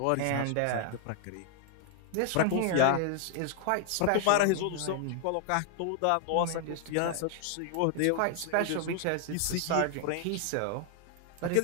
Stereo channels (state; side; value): different; both; correlation 0.00